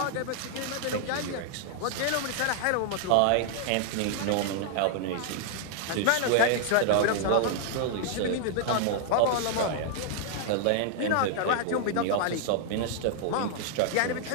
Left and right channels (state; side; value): different; both; correlation -0.01